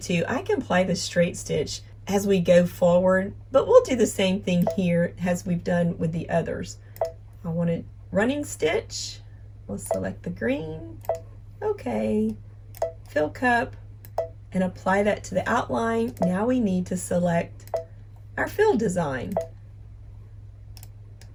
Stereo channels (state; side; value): identical; both; correlation 1.00